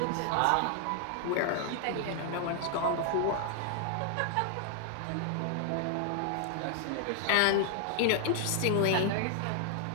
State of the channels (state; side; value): different; both; correlation 0.00